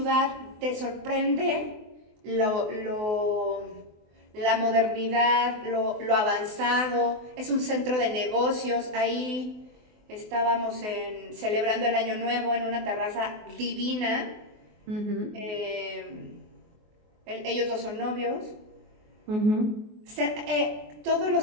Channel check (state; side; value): late; left; 24 ms